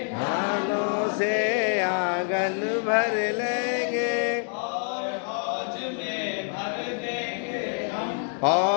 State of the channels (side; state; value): right; silent; 61 dB below the other